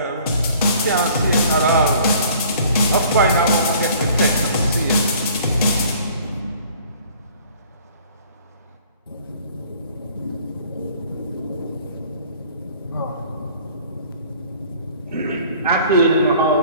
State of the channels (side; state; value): both; inverted; correlation -0.53